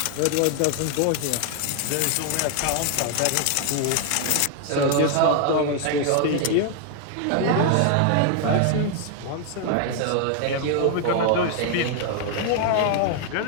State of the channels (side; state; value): both; different; correlation 0.00